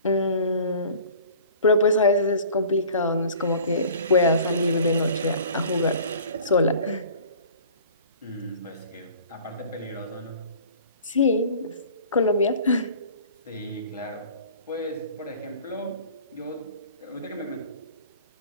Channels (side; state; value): both; inverted; correlation -0.46